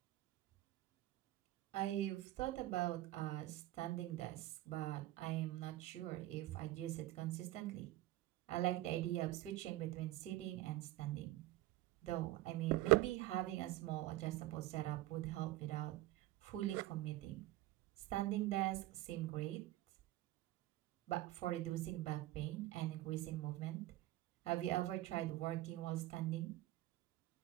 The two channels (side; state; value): left; quieter; 16.3 dB